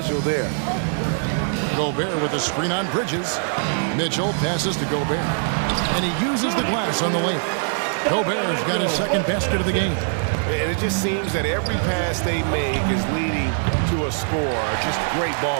there. Gobert with a screen on Bridges. Mitchell passes to Gobert. And he uses the glass on the lane. Gobert's got his second basket of the game. And it just seems that every pass they make is leading to a score. Just great ball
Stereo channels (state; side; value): silent; left; digital silence